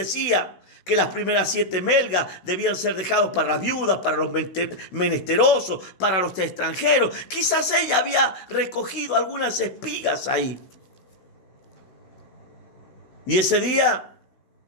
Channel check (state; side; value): late; right; 16 ms